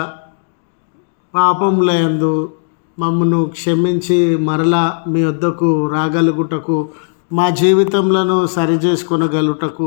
పాపముల యందు మమ్మను క్షమించి మరలా మీ వద్దకు రాగలుగుటకు, మా జీవితంలో సరిచేసుకొనగలుగుటకు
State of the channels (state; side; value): silent; right; digital silence